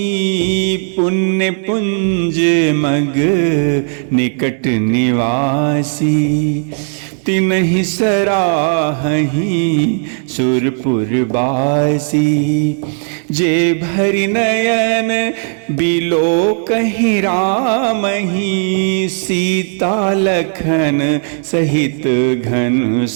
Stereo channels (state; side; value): silent; left; 57 dB below the other